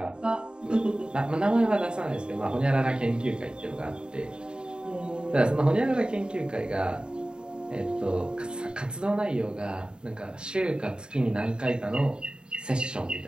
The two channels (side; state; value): left; late; 0.049 ms